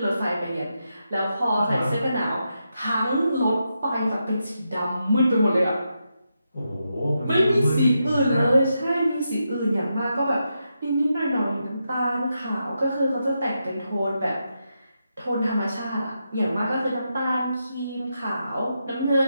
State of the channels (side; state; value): both; inverted; correlation -0.85